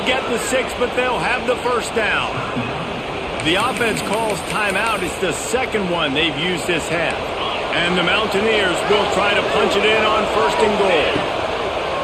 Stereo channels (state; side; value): identical; both; correlation 1.00